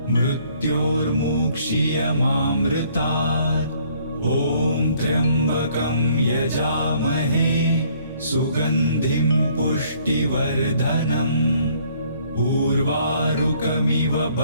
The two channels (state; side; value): inverted; both; correlation -0.62